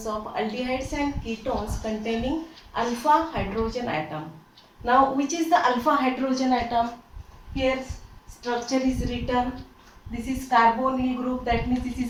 of aldehydes and ketones containing alpha hydrogen atom. Now, which is the alpha hydrogen atom? Here, structure is written. This is carbonyl group. That means this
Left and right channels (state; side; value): identical; both; correlation 1.00